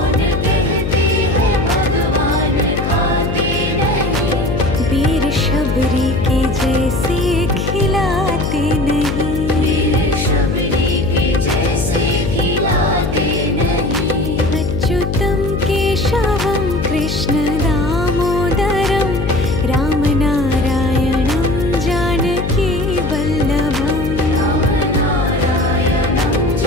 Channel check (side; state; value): left; noise; hum, 2 dB below the sound